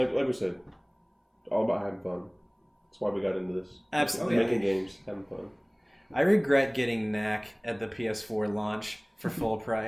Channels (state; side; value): identical; both; correlation 1.00